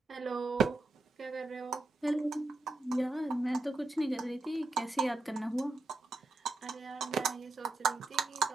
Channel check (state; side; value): quieter; left; 3.2 dB